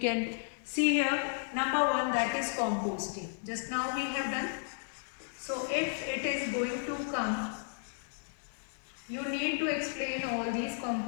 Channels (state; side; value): silent; right; digital silence